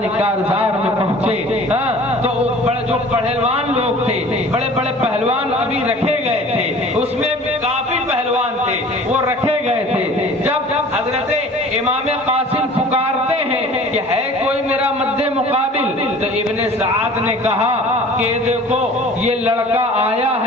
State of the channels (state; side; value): normal; both; correlation 0.45